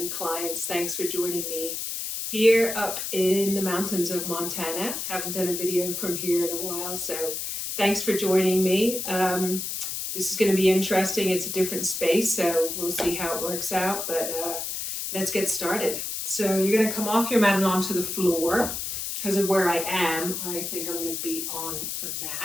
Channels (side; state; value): left; noise; hiss, 4 dB below the sound